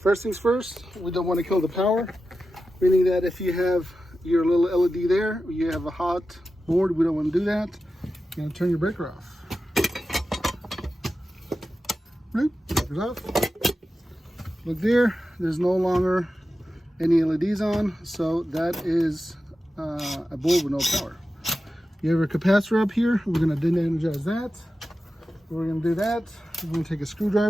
things first, we don't want to kill the power, meaning that if you have your little LED there, you have a hot board, we don't want to do that. You're going to turn your breaker off. Bloop, breaker's off. Look there, there's no longer any LEDs on, so that is a board with no power. You have a capacitor up here, we're going to de-energize that. We're going to do that, we're going to take a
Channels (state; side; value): normal; both; correlation 0.92